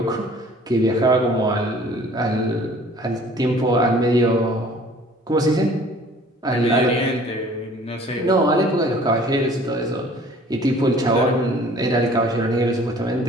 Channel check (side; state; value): both; normal; correlation 0.52